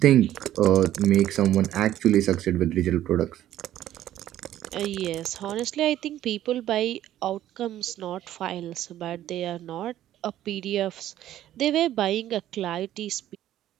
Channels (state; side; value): quieter; left; 12.7 dB